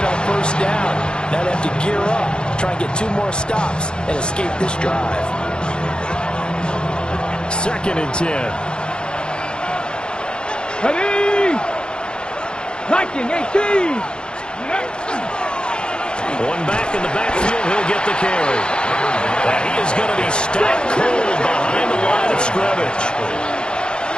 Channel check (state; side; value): late; right; 0.050 ms